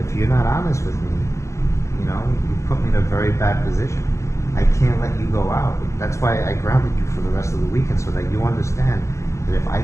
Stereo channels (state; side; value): late; right; 0.14 ms